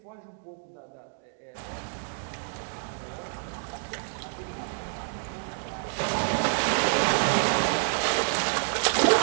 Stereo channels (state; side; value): silent; left; digital silence